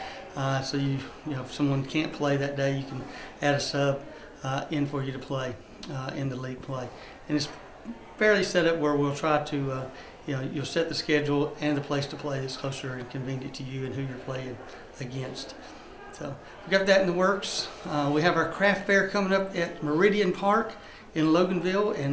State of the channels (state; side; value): identical; both; correlation 1.00